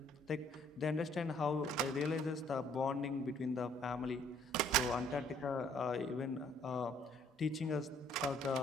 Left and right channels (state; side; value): normal; both; correlation 0.62